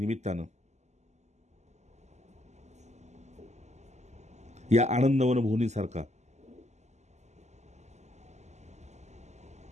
या आनंदवन भुवनीसारखा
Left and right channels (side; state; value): left; late; 0.33 ms